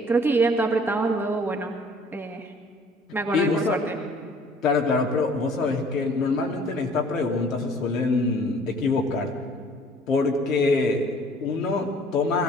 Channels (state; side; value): normal; both; correlation 0.54